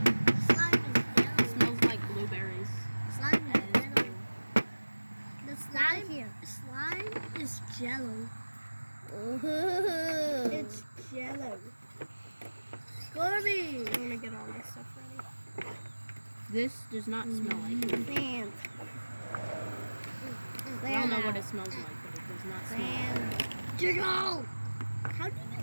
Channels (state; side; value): inverted; both; correlation -1.00